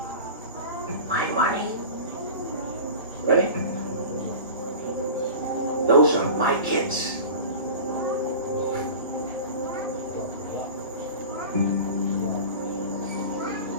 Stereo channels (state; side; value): inverted; both; correlation -0.35